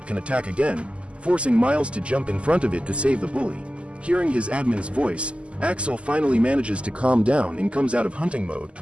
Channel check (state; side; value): late; left; 0.056 ms